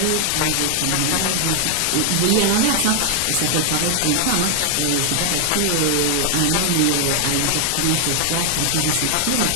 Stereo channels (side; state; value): both; different; correlation 0.00